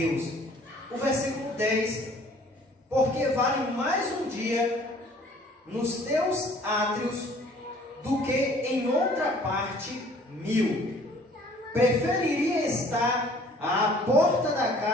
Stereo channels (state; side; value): normal; both; correlation 0.54